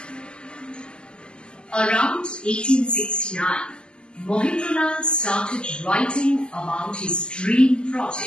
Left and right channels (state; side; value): late; right; 0.052 ms